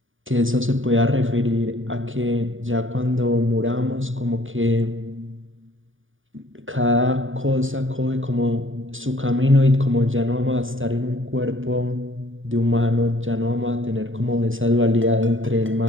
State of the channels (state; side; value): late; left; 0.57 ms